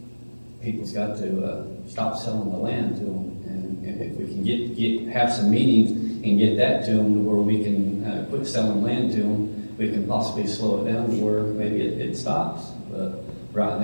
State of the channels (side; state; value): both; inverted; correlation -1.00